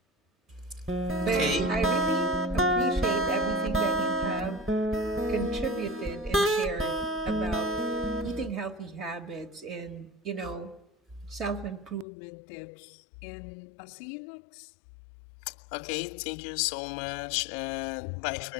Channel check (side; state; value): right; drops out; at 12.1 s